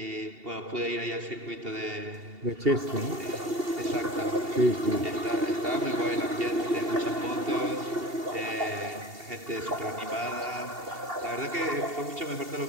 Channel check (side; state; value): left; late; 2.7 ms